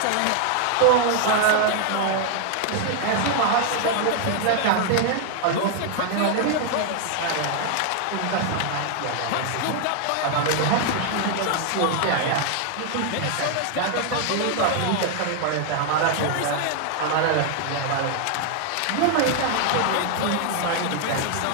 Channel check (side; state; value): both; different; correlation 0.00